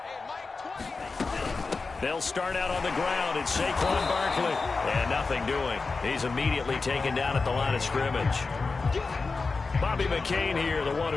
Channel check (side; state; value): right; quieter; 4.2 dB